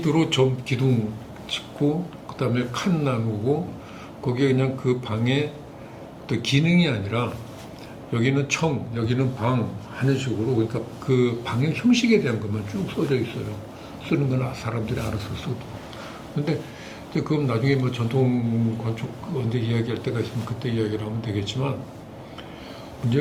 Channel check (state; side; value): identical; both; correlation 1.00